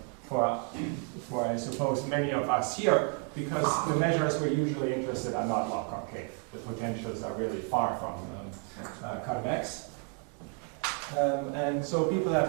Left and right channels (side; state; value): left; quieter; 37.3 dB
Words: I suppose many of us here, because the measures we're usually interested are not log-concave. The potentials are really far from convex. And so people